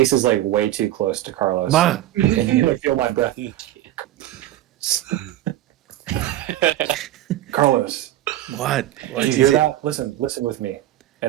is like way too close to Carlos. Ma! And you can feel my breath. Carlos, What? did you hear that? Listen with me.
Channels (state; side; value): quieter; left; 14.1 dB